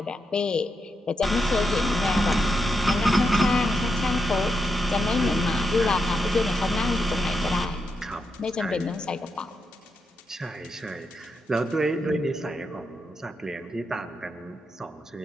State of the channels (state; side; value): normal; both; correlation 0.85